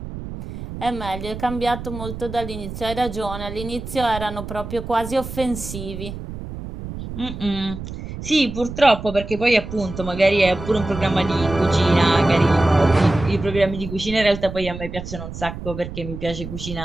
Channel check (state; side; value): noise; right; rumble, 9 dB below the sound